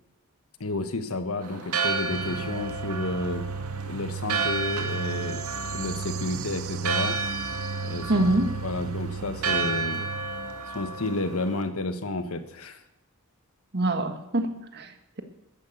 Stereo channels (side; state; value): both; normal; correlation 0.18